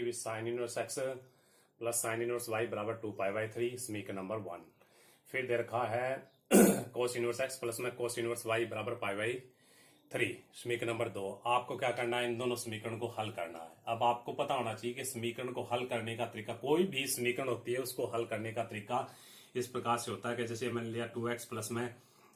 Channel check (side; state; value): both; identical; correlation 1.00